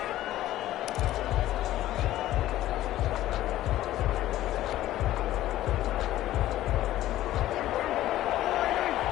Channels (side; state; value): right; quieter; 14.3 dB